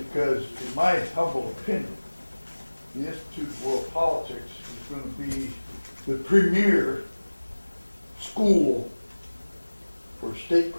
in my humble opinion, the Institute of World Politics is going to be the premier school for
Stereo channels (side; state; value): both; inverted; correlation -1.00